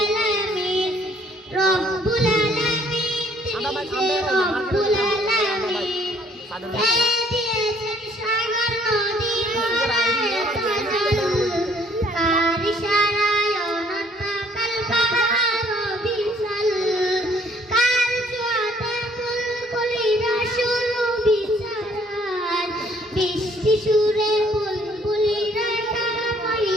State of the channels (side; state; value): both; normal; correlation 0.62